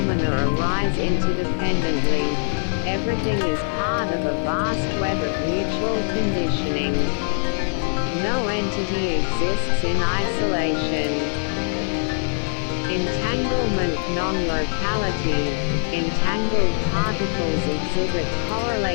arise interdependently. Everything is part of a vast web of mutual conditioning. No entity exists in isolation. Entanglement non-locality. Entangled particles exhibit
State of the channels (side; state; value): right; silent; 64 dB below the other